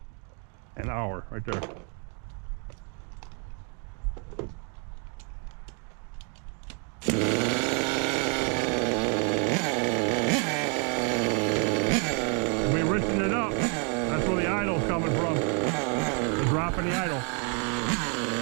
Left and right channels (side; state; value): left; quieter; 38.8 dB